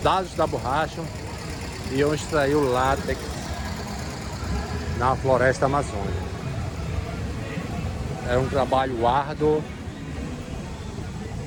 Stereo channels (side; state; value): both; identical; correlation 1.00